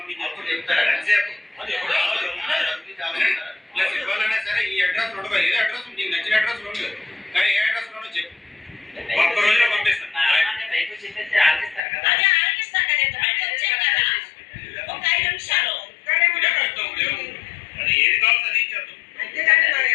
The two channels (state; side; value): drops out; right; at 11.8 s